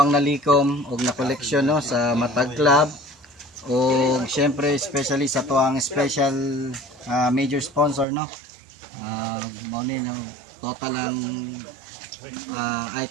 nalikom og na collection no sa Matag Club og syempre especially sa atuang special major sponsor no. Mao ni total ang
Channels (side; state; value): left; drops out; at 8.1 s